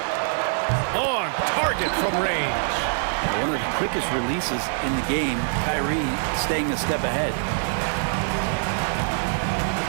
On target from range. One of the quickest releases in the game. Kyrie staying a step ahead.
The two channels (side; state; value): left; silent; 56 dB below the other